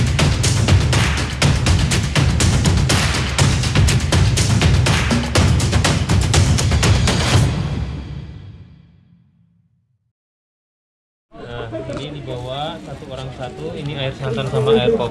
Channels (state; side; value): identical; both; correlation 1.00